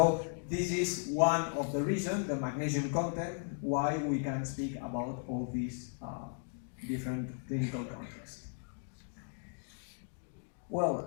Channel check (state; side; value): silent; right; 54 dB below the other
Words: this is one of the reasons, the magnesium content, why we can speak about all these different clinical contexts.